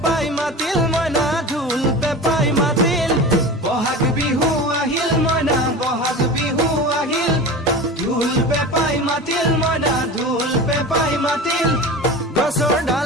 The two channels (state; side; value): normal; both; correlation 0.32